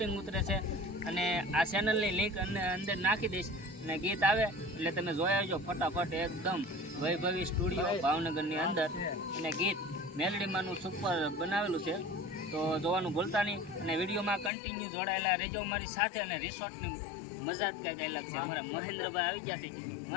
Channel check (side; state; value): right; drops out; at 14.5 s